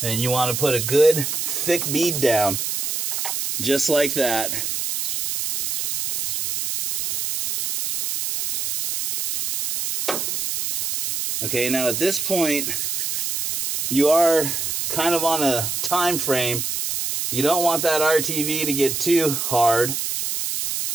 And you want to put a good thick bead down, just like that. Okay, now at this point, you are kind of on a time frame. You don't want that RTV to get too hard.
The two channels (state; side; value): noise; right; hiss, 2 dB below the sound